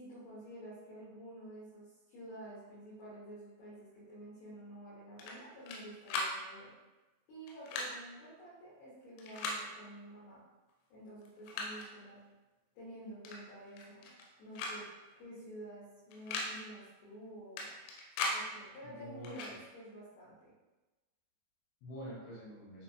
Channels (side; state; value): right; late; 23 ms